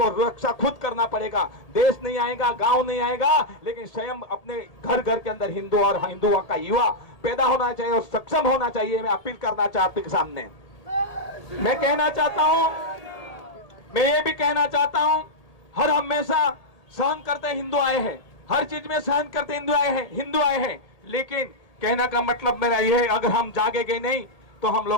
रक्षा खुद करना पड़ेगा। देश नहीं आएगा, गांव नहीं आएगा, लेकिन स्वयं अपने घर घर के अंदर हिंदू और हिंदुओं का युवा पैदा होना चाहिए और सक्षम होना चाहिए। मैं अपील करना चाहता हूं सामने, मैं कहना चाहता हूं, मैं ये भी कहना चाहता हूं, हर हमेशा सहन करते हिंदू आए हैं, हर चीज में सहन करते हिंदू आए हैं। लेकिन कहने का मतलब मेरा यह है, अगर हम जागेंगे नहीं तो हम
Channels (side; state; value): right; late; 1.8 ms